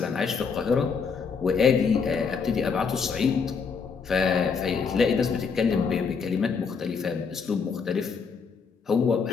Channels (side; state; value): right; quieter; 5.6 dB